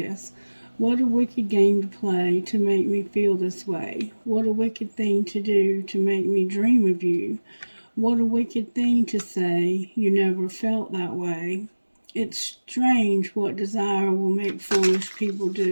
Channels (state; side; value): inverted; both; correlation -1.00